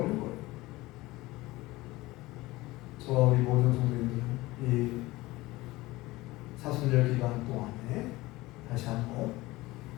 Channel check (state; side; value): quieter; right; 19.7 dB